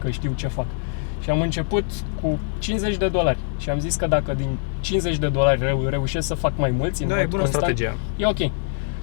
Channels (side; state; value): right; silent; digital silence